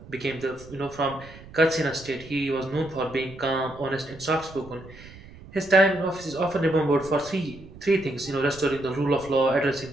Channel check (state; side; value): noise; right; rumble, 18 dB below the sound